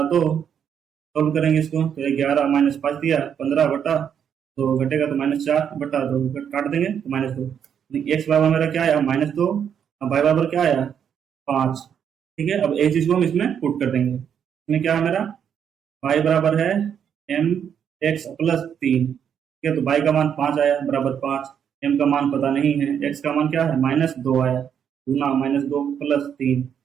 2, सॉल्व करेंगे इसको तो 11 माइनस 5 दिया 15 बटा तो घटेगा तो -4 बटा 2 काट देंगे तो -2। एक्स बराबर मेरा क्या आया -2 और वाई बराबर क्या आया 5। ठीक है, अब एक चीज को हम इसमें पुट कर देंगे। इसमें क्या है मेरा y बराबर है एम एक्स प्लस 3। ठीक है, तो y का मान 5 आया बराबर 5, m का मान पता नहीं है, x का मान क्या है -2 आया गुना -2 प्लस 3।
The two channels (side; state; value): left; quieter; 8.2 dB